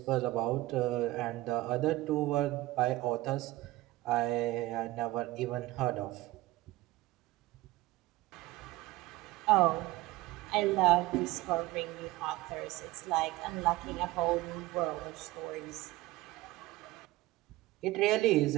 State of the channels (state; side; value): quieter; left; 18.2 dB